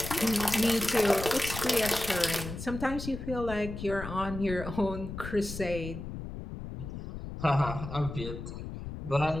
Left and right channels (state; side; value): noise; left; rumble, 8 dB below the sound